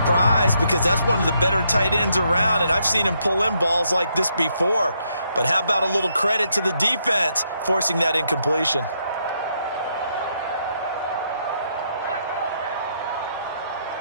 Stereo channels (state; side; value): inverted; both; correlation -0.76